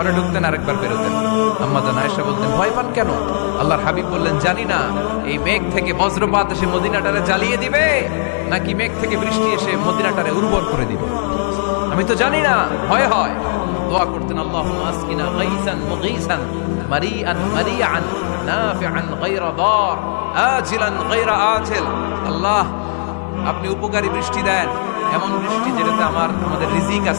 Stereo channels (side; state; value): right; silent; 61 dB below the other